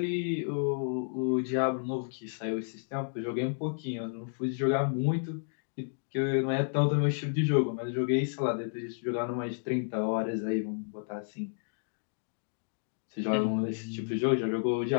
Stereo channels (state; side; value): silent; right; digital silence